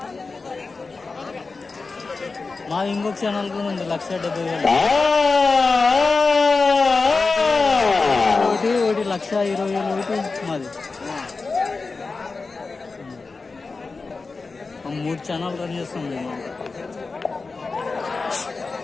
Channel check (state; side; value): quieter; right; 4.1 dB